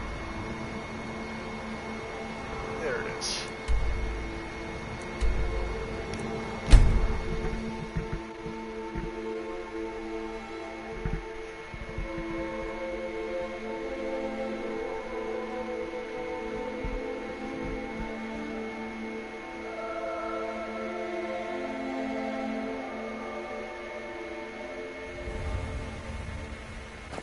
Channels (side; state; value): both; identical; correlation 1.00